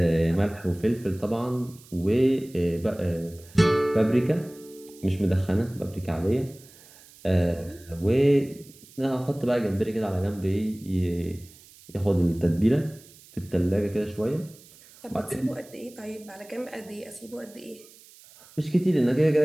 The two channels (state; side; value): noise; right; hiss, 23 dB below the sound